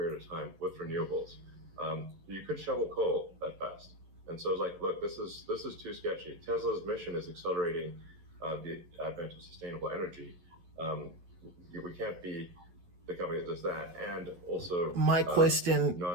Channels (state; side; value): late; left; 11 ms